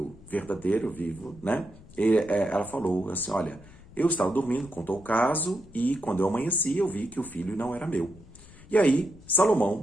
verdadeiro, vivo, ela falou assim, olha, eu estava dormindo, contou o caso, e quando eu amanheci, eu vi que o filho não era meu. E aí,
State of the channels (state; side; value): noise; left; rumble, 21 dB below the sound